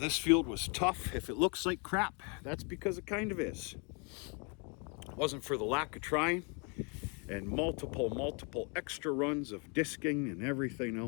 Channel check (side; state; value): right; quieter; 35.1 dB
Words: field was tough. If it looks like crap, that's because it kind of is. It wasn't for the lack of trying and multiple extra runs of disking and everything